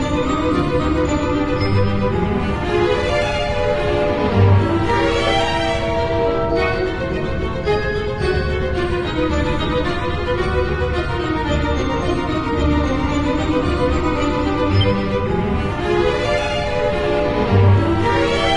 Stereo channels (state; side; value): identical; both; correlation 1.00